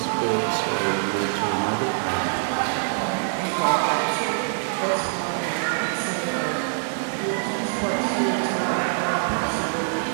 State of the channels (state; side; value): silent; left; digital silence